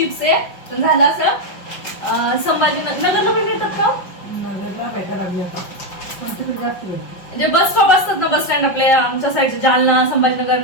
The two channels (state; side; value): late; right; 5.4 ms